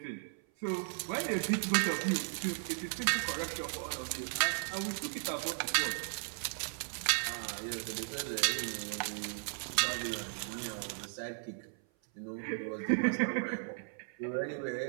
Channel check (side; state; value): left; silent; 54 dB below the other